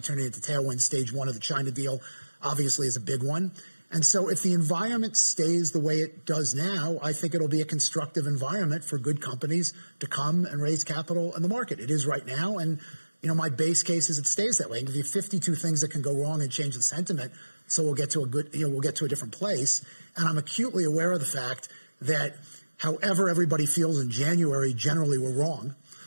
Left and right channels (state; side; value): inverted; both; correlation -1.00